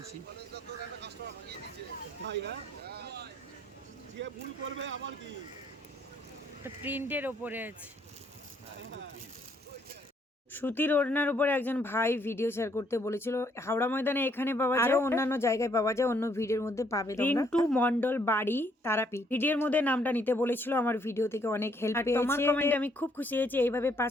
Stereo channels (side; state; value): both; normal; correlation 0.68